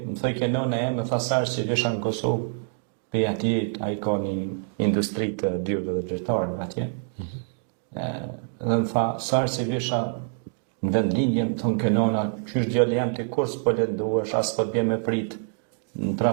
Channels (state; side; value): silent; left; 61 dB below the other